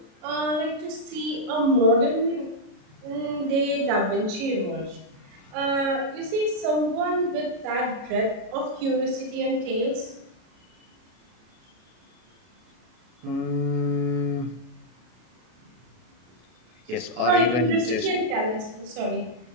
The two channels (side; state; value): left; late; 33 ms